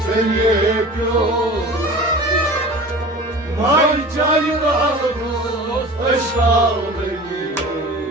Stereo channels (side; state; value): both; normal; correlation 0.38